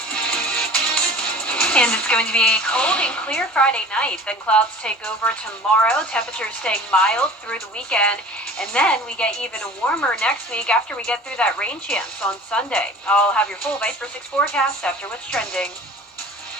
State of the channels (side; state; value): both; normal; correlation 0.42